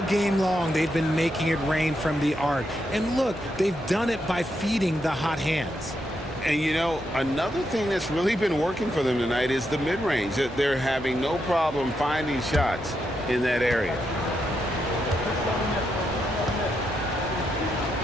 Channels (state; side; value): normal; both; correlation 0.82